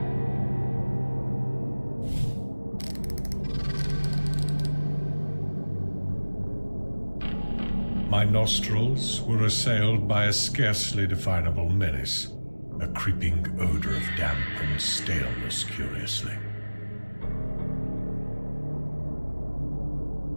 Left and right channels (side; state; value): both; inverted; correlation -1.00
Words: My nostrils were assailed by a scarcely definable menace, a creeping odor of damp and staleness, curiously.